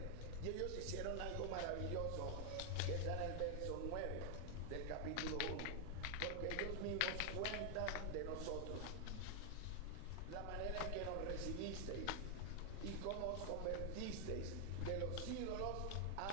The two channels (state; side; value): different; both; correlation 0.00